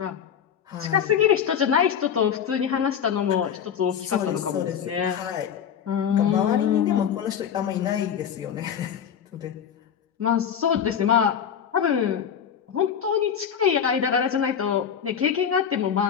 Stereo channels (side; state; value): right; quieter; 8.2 dB